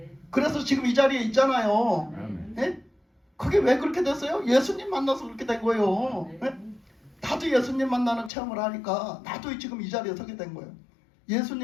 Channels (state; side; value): drops out; right; at 8.3 s